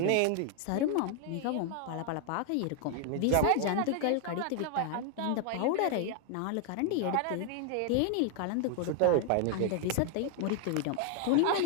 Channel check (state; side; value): different; both; correlation 0.00